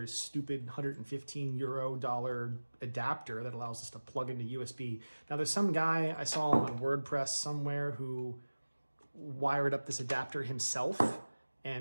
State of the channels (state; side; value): inverted; both; correlation -1.00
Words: stupid $115 adapter that allows us to plug into USB. Now there's some guy I saw on WordPress somewhere who wired up this adapter himself,